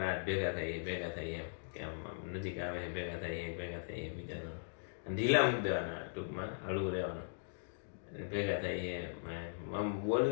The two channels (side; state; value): right; silent; digital silence